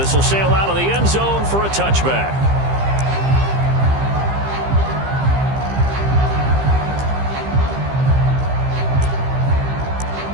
will sail out of the end zone for a touchback.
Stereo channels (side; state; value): left; late; 15 ms